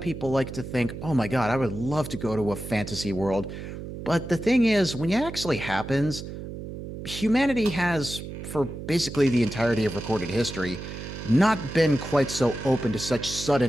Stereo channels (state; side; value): noise; right; hum, 9 dB below the sound